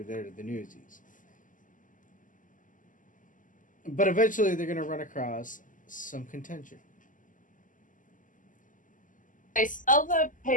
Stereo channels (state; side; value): late; right; 0.38 ms